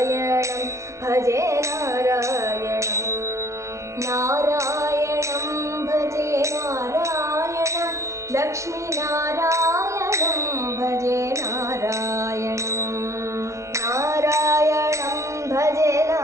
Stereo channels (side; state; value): left; late; 0.14 ms